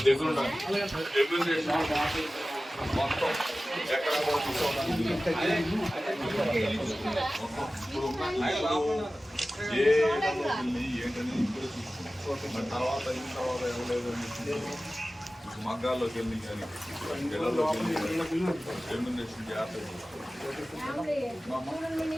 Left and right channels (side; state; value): both; normal; correlation 0.96